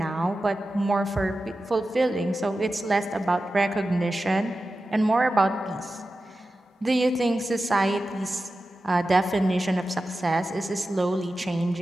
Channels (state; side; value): normal; both; correlation 0.93